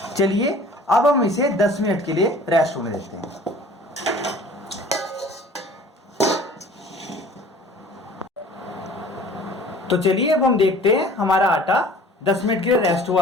चलिए अब हम इसे 10 मिनट के लिए रेस्ट होने देते हैं। तो चलिए अब हम देखते हैं हमारा आटा 10 मिनट के लिए रेस्ट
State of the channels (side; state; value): both; normal; correlation 0.48